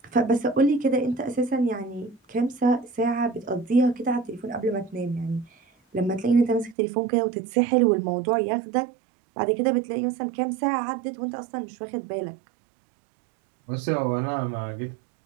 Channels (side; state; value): left; drops out; at 6.8 s